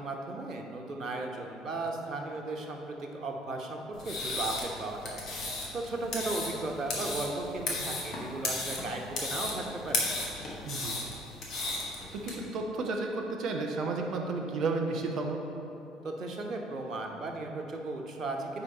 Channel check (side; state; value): both; normal; correlation 0.57